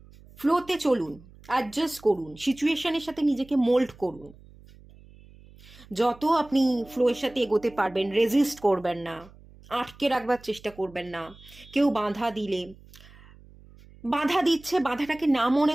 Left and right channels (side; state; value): right; noise; hum, 23 dB below the sound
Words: ফ্লোতে চলুন, অ্যাডজাস্ট করুন, সিচুয়েশনের সাথে নিজেকে মোল্ড করুন। যত আপনি ফ্লোয়ের সাথে এগোতে পারবেন, রেজিস্ট করবেন না, আটকে রাখবার চেষ্টা করবেন না। কেউ বাধা দিচ্ছে, বাধাটাকে না